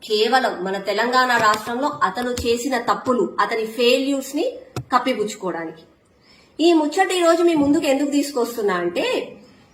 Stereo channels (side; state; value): both; identical; correlation 1.00